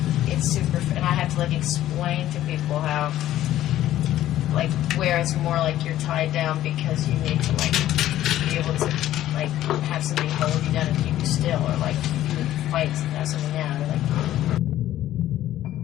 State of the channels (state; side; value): quieter; right; 13.3 dB